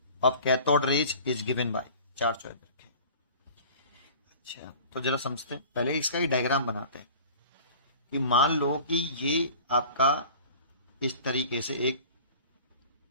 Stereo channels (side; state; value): both; inverted; correlation -0.43